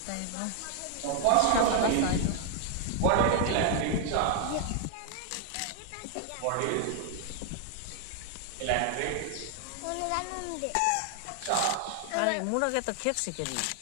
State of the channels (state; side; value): different; both; correlation 0.00